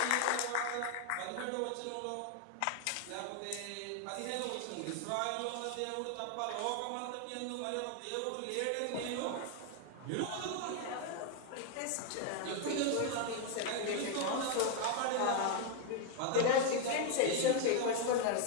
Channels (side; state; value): both; different; correlation 0.01